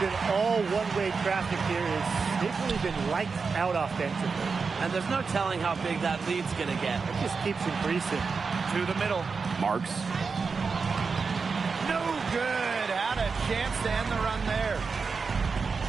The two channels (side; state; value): left; quieter; 4.9 dB